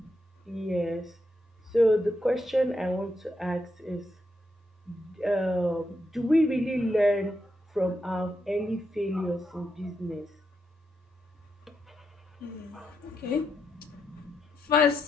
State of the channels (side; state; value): both; normal; correlation 0.82